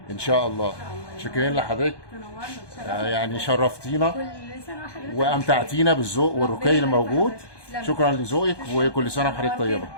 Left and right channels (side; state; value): right; late; 1.2 ms